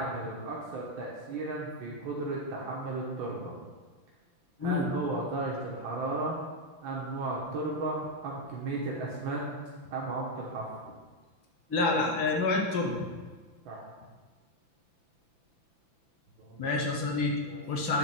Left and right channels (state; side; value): late; left; 5.9 ms